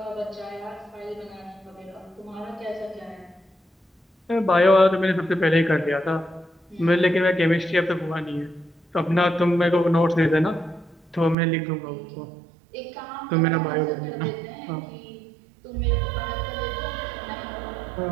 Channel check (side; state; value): left; drops out; at 11.4 s